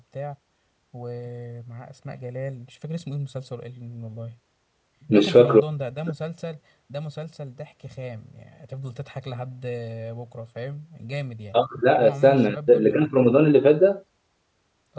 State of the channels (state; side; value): identical; both; correlation 1.00